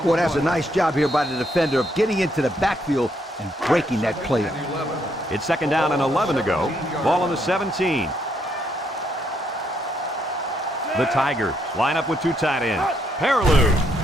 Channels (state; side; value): normal; both; correlation 0.74